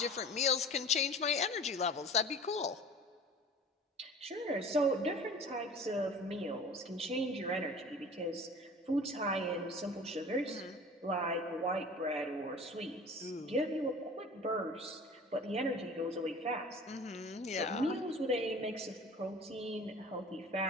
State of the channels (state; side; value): normal; both; correlation 0.42